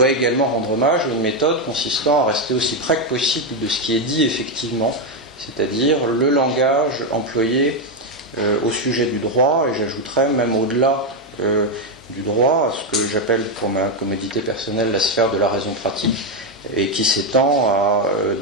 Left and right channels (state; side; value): normal; both; correlation 0.05